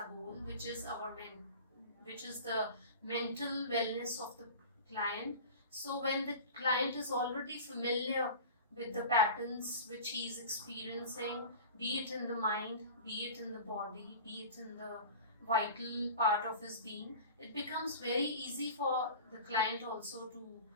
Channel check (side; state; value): both; inverted; correlation -0.37